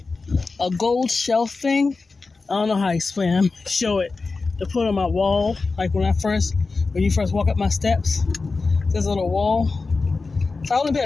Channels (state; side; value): quieter; right; 4.0 dB